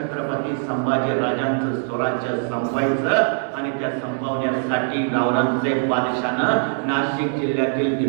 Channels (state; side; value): silent; left; 56 dB below the other